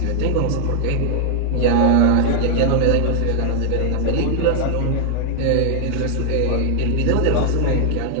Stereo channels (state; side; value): different; both; correlation 0.00